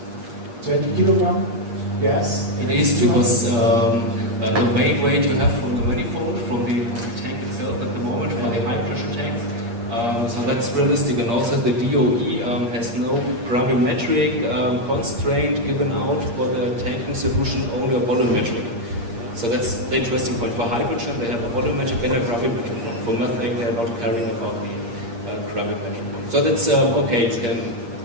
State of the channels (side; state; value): left; late; 8.5 ms